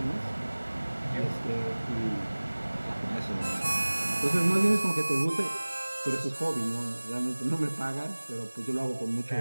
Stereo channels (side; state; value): both; inverted; correlation -1.00